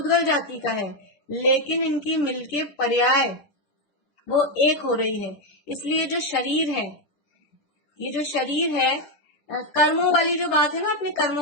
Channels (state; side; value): late; right; 10 ms